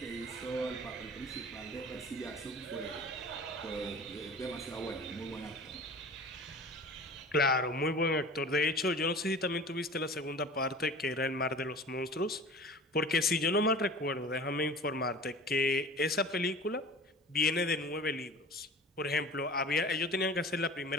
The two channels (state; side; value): normal; both; correlation 0.40